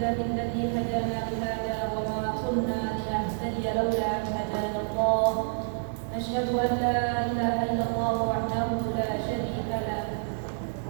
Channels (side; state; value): left; silent; digital silence